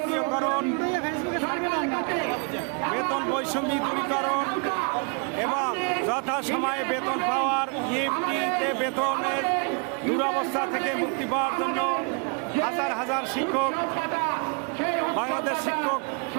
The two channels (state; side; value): quieter; left; 36.8 dB